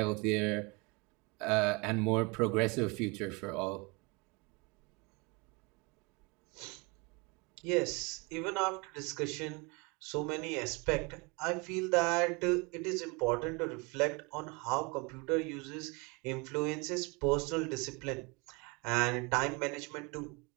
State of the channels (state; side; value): quieter; left; 28.0 dB